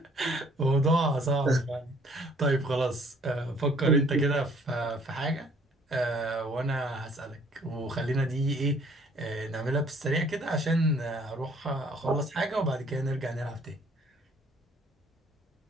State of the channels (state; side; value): normal; both; correlation 0.59